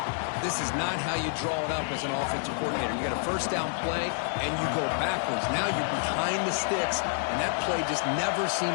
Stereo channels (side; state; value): right; silent; digital silence